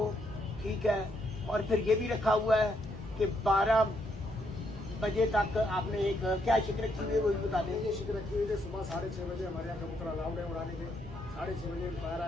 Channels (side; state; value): both; normal; correlation 0.75